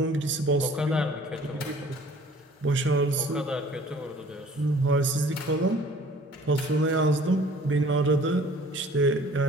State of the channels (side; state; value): both; normal; correlation 0.51